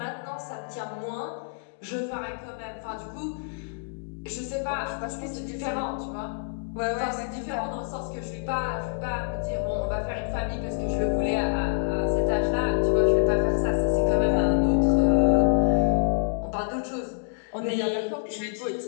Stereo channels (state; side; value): silent; right; digital silence